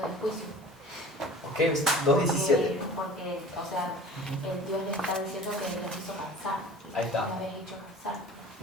de juicio. Ok, 2:17. Porque, o sea, Dios le está diciendo que los hizo cansar. Ahí está. Lo habéis hecho cansar.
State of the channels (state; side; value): normal; both; correlation 0.42